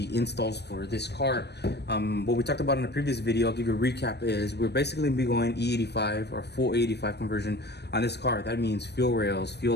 installs for this car. What we talked about in the previous video, I'll give you a recap, is we're basically going to be going E85 or full 85 conversion on this car. That means fuel rails,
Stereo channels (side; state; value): right; late; 0.49 ms